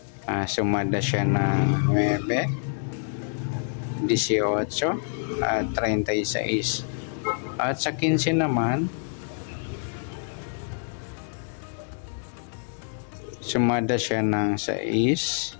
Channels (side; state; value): right; silent; digital silence